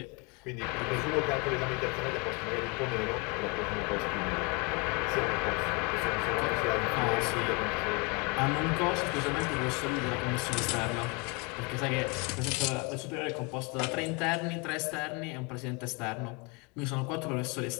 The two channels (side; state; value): right; quieter; 30.3 dB